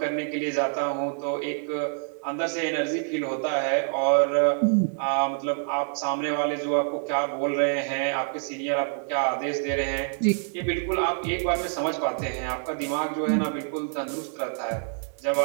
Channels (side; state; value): left; silent; 61 dB below the other